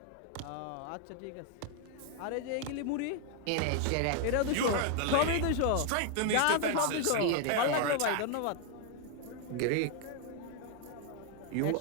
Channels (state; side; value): different; both; correlation 0.00